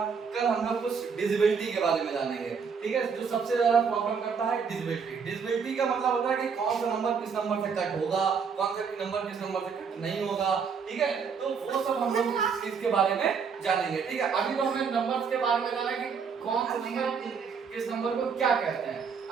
कल हम लोग कुछ डिविजिबिलिटी के बारे में जानेंगे, ठीक है, जो सबसे ज्यादा प्रॉब्लम करता है डिविजिबिलिटी का मतलब होता है कि कौन सा नंबर किस नंबर से कट होगा, कौन सा नंबर किस नंबर से कट नहीं होगा, ठीक है, तो वो सब हम लोग इस चीज के बारे में जानेंगे, ठीक है। अभी तो हमें नंबर्स के बारे में जाना है कि कौन सा नंबर किस नंबर को क्या कहते हैं,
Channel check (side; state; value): left; quieter; 6.1 dB